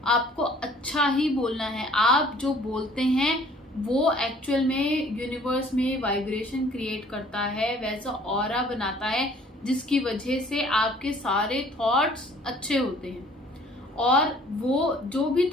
आपको अच्छा ही बोलना है। आप जो बोलते हैं वो एक्चुअल में यूनिवर्स में वाइब्रेशन क्रिएट करता है, वैसा ऑरा बनाता है, जिसकी वजह से आपके सारे थॉट्स अच्छे होते हैं, और वो जो भी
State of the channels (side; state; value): both; normal; correlation 0.55